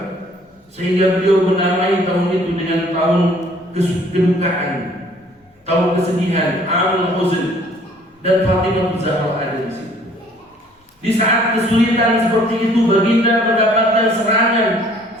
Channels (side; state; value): both; normal; correlation 0.57